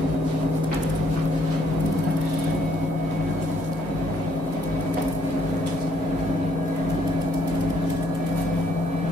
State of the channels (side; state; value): both; normal; correlation 0.68